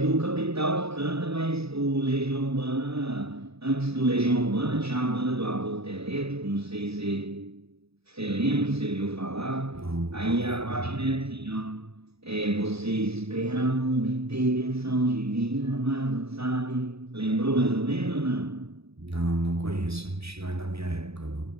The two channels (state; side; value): late; left; 0.78 ms